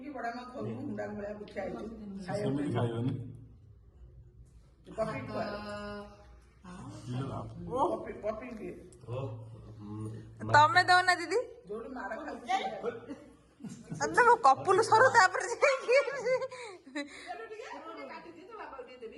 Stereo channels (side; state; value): both; identical; correlation 1.00